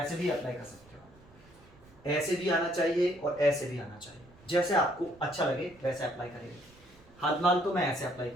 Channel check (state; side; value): noise; right; rumble, 26 dB below the sound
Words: भी अप्लाई कर सकते हो, ऐसे भी आना चाहिए और ऐसे भी आना चाहिए, जैसे आपको अच्छा लगे वैसे अप्लाई करिए। हाल तो मैं ऐसे अप्लाई